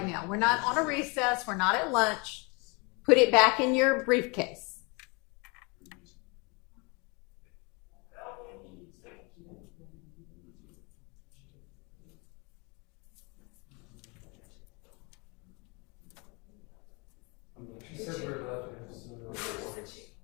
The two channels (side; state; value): right; quieter; 29.9 dB